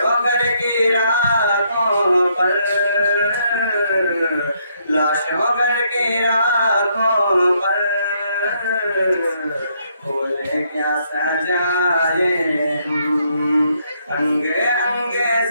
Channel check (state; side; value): inverted; both; correlation -0.72